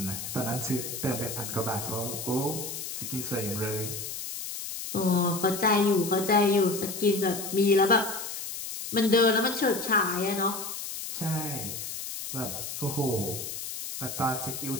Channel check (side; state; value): left; noise; hiss, 7 dB below the sound